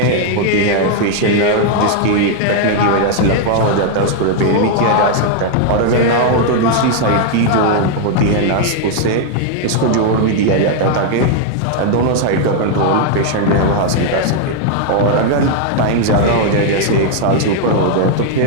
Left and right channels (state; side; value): different; both; correlation 0.00